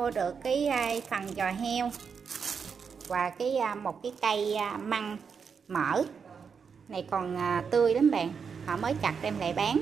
được cái phần giò heo và một cái cây măng mỡ này còn tươi lắm bạn, họ mới chặt đem lại bán,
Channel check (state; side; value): quieter; left; 6.2 dB